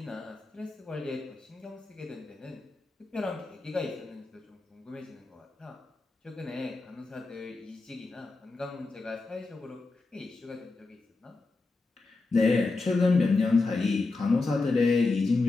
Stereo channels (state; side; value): quieter; right; 3.6 dB